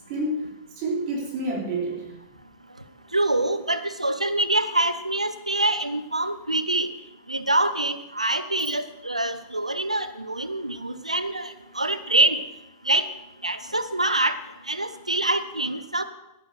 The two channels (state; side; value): inverted; both; correlation -0.38